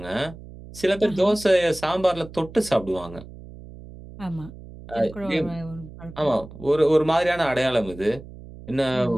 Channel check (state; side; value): noise; right; hum, 16 dB below the sound